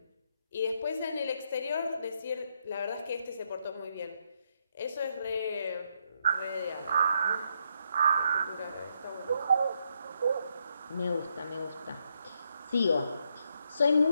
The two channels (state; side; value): inverted; both; correlation -0.78